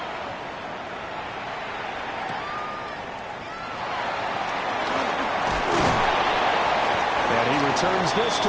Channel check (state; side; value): identical; both; correlation 1.00